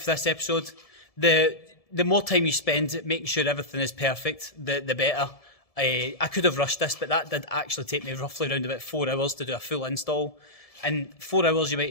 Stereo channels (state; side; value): late; right; 1.7 ms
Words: this episode. The more time you spend making sure everything is perfect, the better. I could have rushed this, but that did actually take me roughly around about 4 hours to do a full install. And 4 hours, you